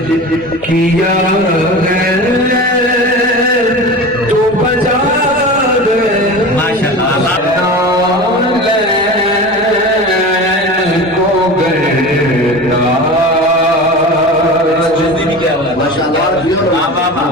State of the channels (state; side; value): normal; both; correlation 0.32